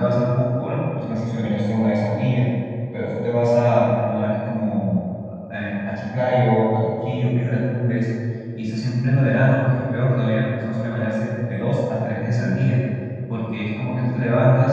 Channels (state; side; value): identical; both; correlation 1.00